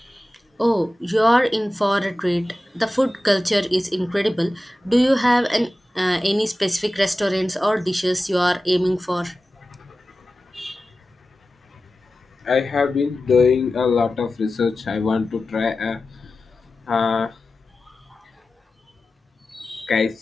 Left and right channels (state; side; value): normal; both; correlation 0.95